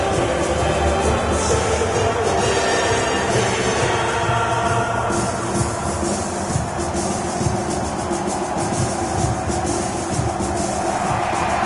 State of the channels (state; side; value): identical; both; correlation 1.00